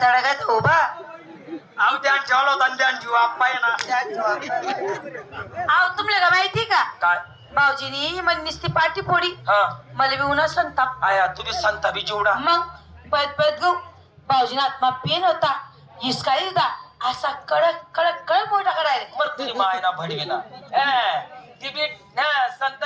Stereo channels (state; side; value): identical; both; correlation 1.00